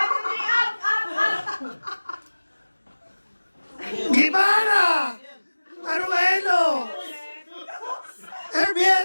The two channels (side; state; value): both; inverted; correlation -1.00